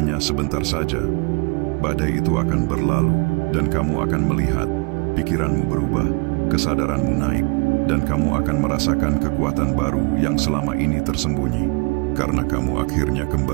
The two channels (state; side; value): quieter; left; 30.8 dB